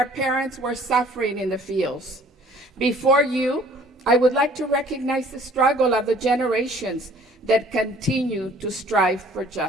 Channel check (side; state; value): both; normal; correlation 0.54